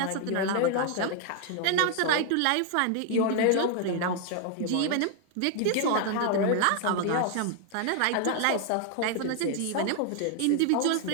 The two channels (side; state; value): both; different; correlation 0.00